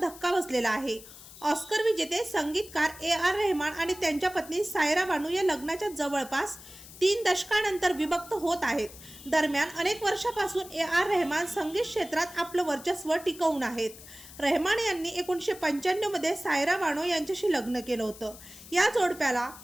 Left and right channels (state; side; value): noise; left; hiss, 17 dB below the sound